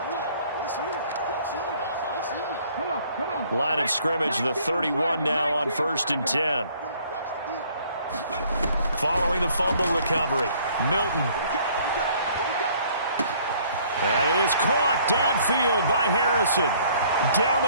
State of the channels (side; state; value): both; inverted; correlation -0.59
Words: Line of scrimmage, the 31 now on 1st and 10. Following the fumble recovery, Milton. That is caught downfield by Harrison. Down